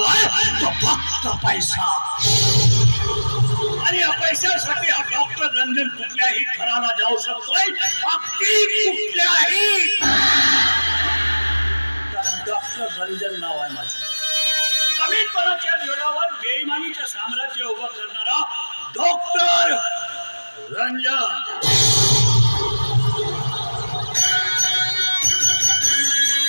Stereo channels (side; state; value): both; inverted; correlation -1.00